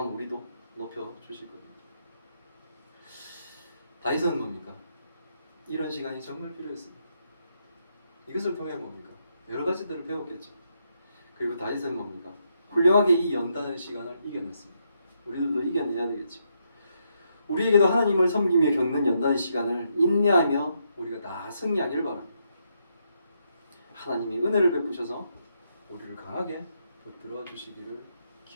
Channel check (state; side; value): inverted; both; correlation -0.78